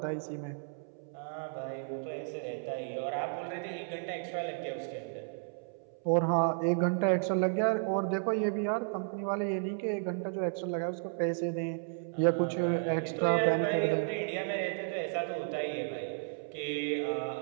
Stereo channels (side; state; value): left; silent; 56 dB below the other